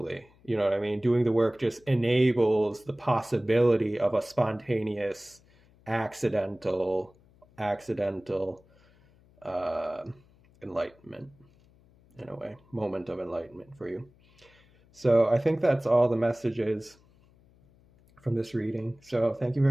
You know what I mean? Doing the work just enables the possibility of a spontaneous, accidental enlightenment, in a way, moment of enlightenment for you. So I think that's all the messages from this reading. So thank you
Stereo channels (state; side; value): noise; left; hum, 30 dB below the sound